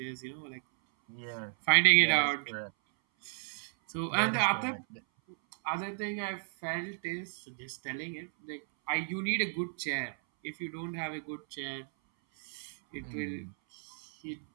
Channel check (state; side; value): silent; left; 55 dB below the other